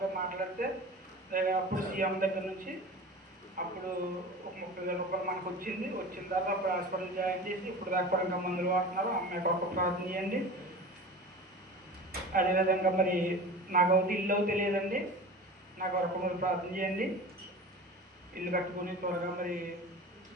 మాట్లాడితే అప్పుడు సీఎం దగ్గర నుంచి అప్పుడు ఒక 30,000 రూపాయలు మనకు వచ్చింది. వచ్చిన తర్వాత అప్పుడు హాస్పిటల్ జాయిన్ చేసి ఇప్పుడు దాకా కూడా ఇంకా మందులు వాడుతున్నారు. అమ్మాయి కొరకు ప్రార్థన చేయండి. అదేవిధంగా మరి నాకు ఒకటి ఇల్లు తెలియదండి, నాకు వరకు మీరు ప్రార్థన చేయండి. ఇల్లు కట్టుకుని త్వరగా మరి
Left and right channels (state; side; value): normal; both; correlation 0.35